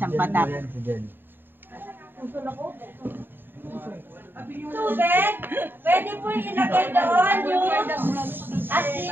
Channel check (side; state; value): left; late; 0.095 ms